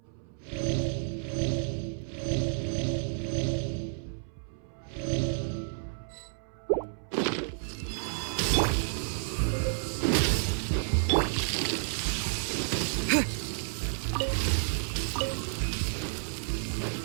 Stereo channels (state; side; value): silent; left; 57 dB below the other